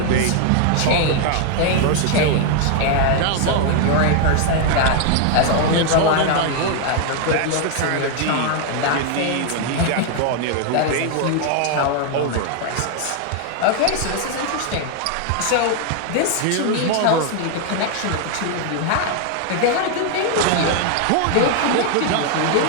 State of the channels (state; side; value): different; both; correlation 0.00